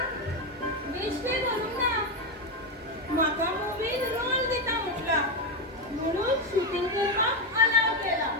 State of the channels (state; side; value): normal; both; correlation 0.09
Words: बेश्टे करूंक ना. म्हाका मुवीन रोल दिता म्हटला म्हणून शूटिंग करपाक अलाव केला.